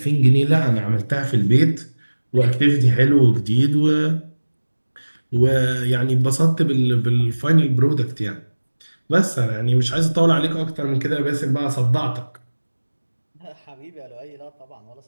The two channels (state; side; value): inverted; both; correlation -1.00